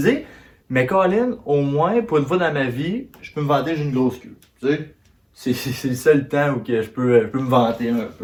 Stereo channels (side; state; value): both; identical; correlation 1.00